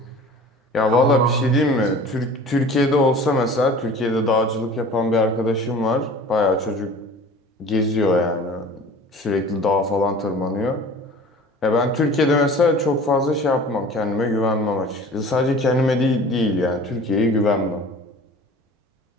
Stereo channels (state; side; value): normal; both; correlation 0.43